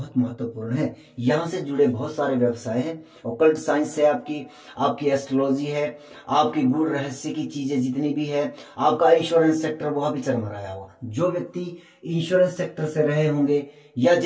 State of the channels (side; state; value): both; identical; correlation 1.00